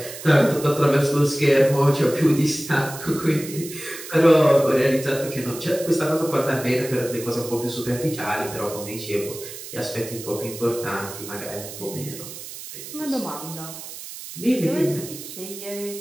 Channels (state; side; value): noise; right; hiss, 12 dB below the sound